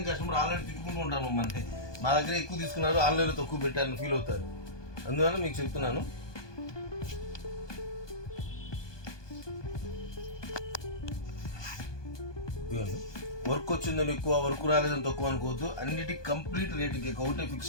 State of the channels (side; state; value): right; late; 1.2 ms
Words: కస్టమర్ ఆన్లైన్ తిట్టుకుంటూ ఉంటాను మమ్మల్ని. మా దగ్గర ఎక్కువ తీసుకున్నారు, ఆన్లైన్లో తక్కువ పెట్టారని ఫీల్ అవుతారు. అందువల్ల మీకు చెప్తున్నాను. వర్క్ వచ్చిందని ఎక్కువ, వర్క్ రాలేదని తక్కువ అనుకోవద్దు. అన్నిటికీ కంప్లీట్ రేటుకి ఒకటే